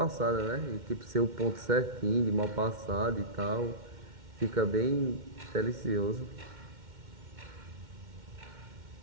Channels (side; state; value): left; late; 2.1 ms